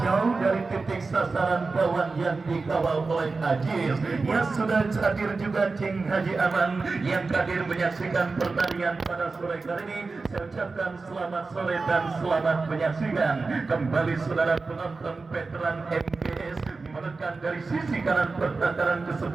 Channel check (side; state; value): left; quieter; 4.0 dB